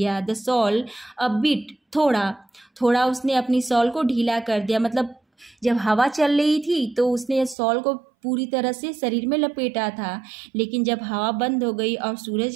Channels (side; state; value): left; drops out; at 7.6 s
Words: द सॉल अ बिट, थोड़ा उसने अपनी सॉल को ढीला कर दिया, मतलब जब हवा चल रही थी तो उसने सॉल को पूरी तरह से शरीर में लपेटा था, लेकिन जब हवा बंद हो गई और